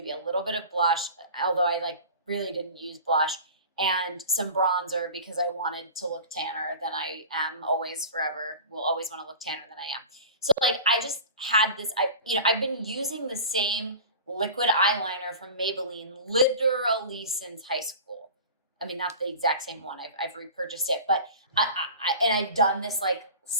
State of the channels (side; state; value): both; inverted; correlation -0.36